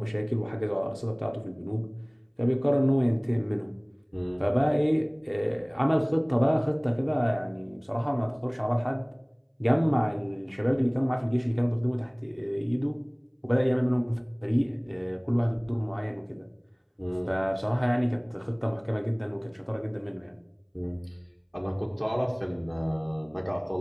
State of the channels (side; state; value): both; identical; correlation 1.00